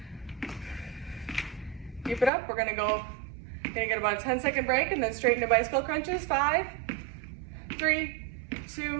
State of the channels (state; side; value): drops out; left; at 2.3 s